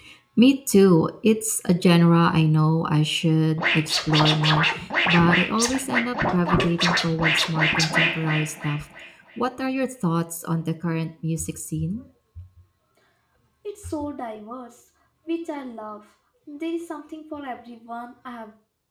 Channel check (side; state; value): both; identical; correlation 1.00